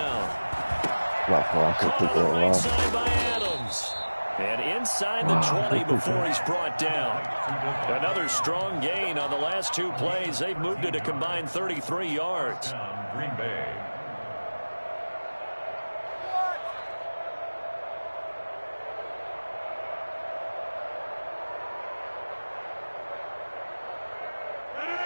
Caught on the right side by Adams. And inside the 20 before he's brought down. Another strong gain on the last 2 plays. They've moved it a combined 33 yards. Green Bay.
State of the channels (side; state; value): both; inverted; correlation -1.00